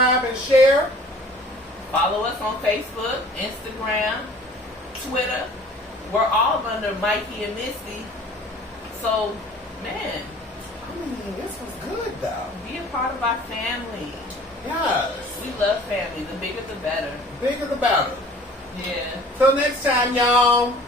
and share. Follow us on Facebook, Instagram, Twitter. We're all under Mikey and Misty. So, man. I mean, this was good, though. Be a part of our family. Yes. We love family. The bigger the better. Bigger the better. Yeah. Till next time, y'all.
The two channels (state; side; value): normal; both; correlation 0.49